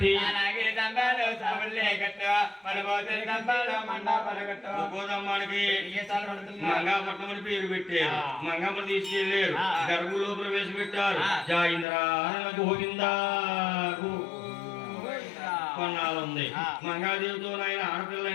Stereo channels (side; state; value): right; drops out; at 11.9 s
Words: గోదమ్మానికి మంగాపట్నం అని పేరు పెట్టారు. మంగమ్మ తీసుకెళ్లారు, గర్భులో ప్రవేశపెట్టారు. జాయింద్ర గోవిందా కొన్నాళ్ళుంది. మంగాదేవితో ఆయన